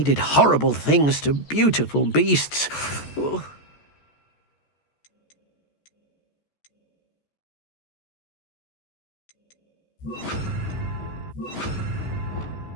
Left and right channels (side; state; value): right; late; 14 ms